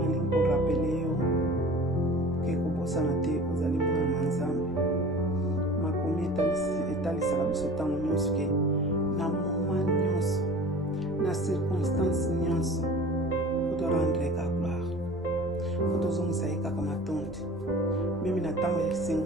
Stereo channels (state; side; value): noise; right; rumble, 24 dB below the sound